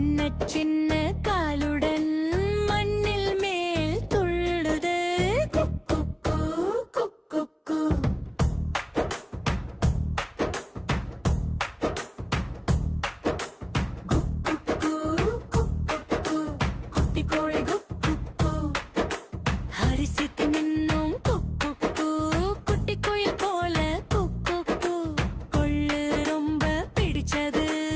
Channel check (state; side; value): identical; both; correlation 1.00